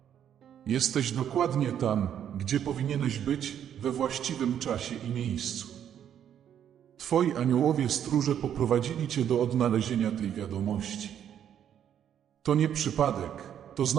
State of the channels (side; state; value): left; quieter; 9.5 dB